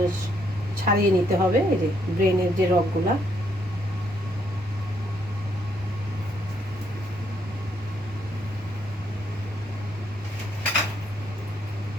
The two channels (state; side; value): normal; both; correlation 0.73